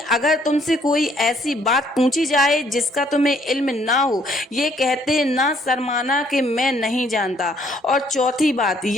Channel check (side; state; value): both; normal; correlation 0.65